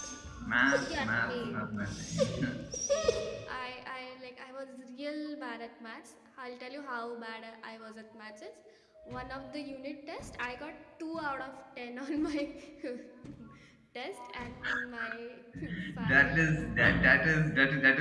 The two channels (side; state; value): both; identical; correlation 1.00